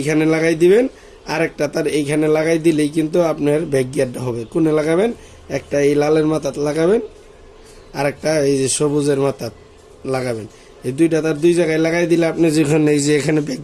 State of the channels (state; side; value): identical; both; correlation 1.00